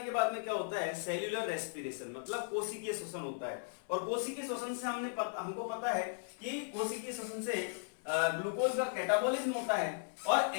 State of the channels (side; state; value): right; silent; 53 dB below the other